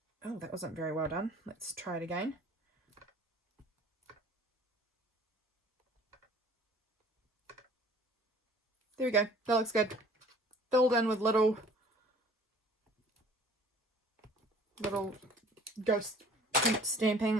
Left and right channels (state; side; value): normal; both; correlation 0.50